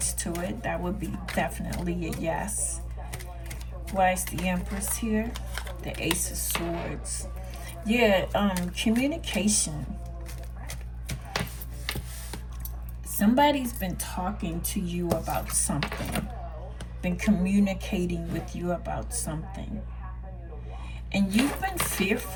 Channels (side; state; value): both; identical; correlation 1.00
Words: to it. That would be definitely a yes. Why is the Empress here? The Ace of Swords. Yeah, communication. Somebody's been talking to you about something, been communicating with you about something, and you've been